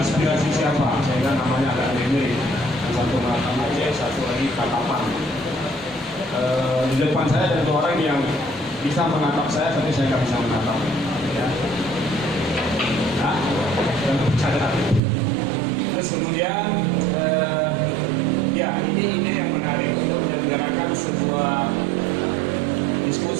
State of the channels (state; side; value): drops out; left; at 15.0 s